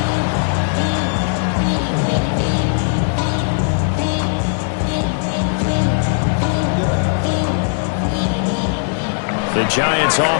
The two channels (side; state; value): right; silent; digital silence